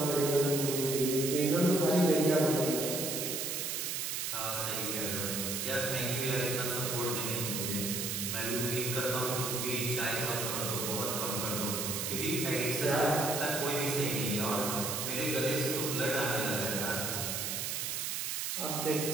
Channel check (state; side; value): noise; right; hiss, 1 dB below the sound